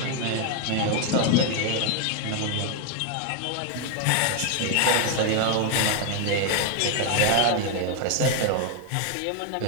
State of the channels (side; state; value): both; different; correlation 0.01